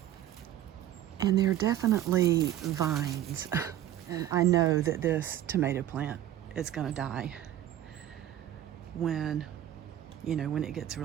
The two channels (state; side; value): quieter; left; 12.2 dB